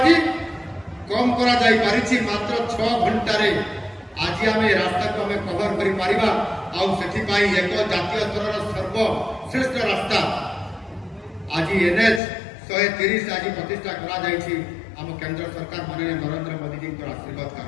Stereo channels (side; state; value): right; drops out; at 12.2 s